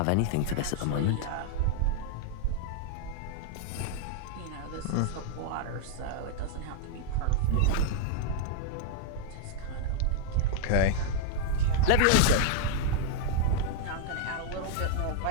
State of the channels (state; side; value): different; both; correlation -0.01